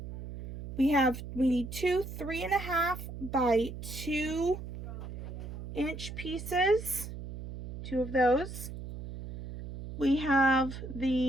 We need two 3.5 by 2 inch pieces. 2 of those. We have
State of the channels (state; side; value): noise; right; hum, 9 dB below the sound